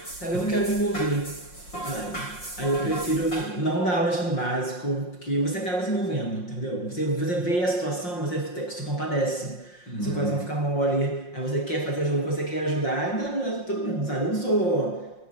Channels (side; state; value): right; late; 5.6 ms